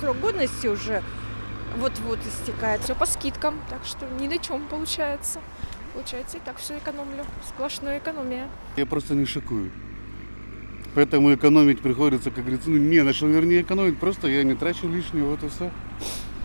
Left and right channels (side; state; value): both; inverted; correlation -1.00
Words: годности уже вот-вот истекает. Все по скидкам, так что ни на чем получается. Получается, и так все экономлю. Сплошная экономия. Я просто не шикую. Поэтому экономить приходится, как говорится, ну не на что, вернее, экономить, просто я не трачу лишнего, вот и все.